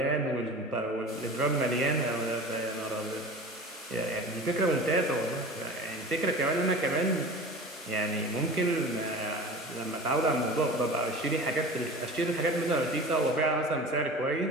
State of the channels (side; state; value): both; normal; correlation 0.36